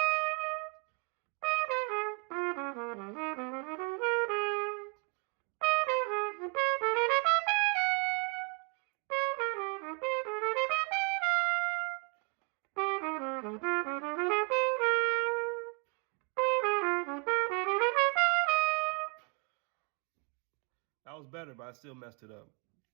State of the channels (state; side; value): quieter; left; 35.2 dB